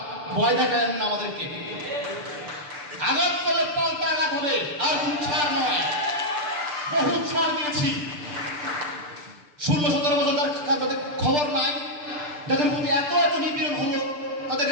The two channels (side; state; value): left; late; 6.8 ms